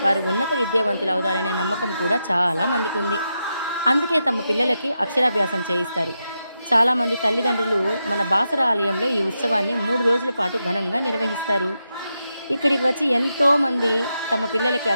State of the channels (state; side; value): inverted; both; correlation -0.87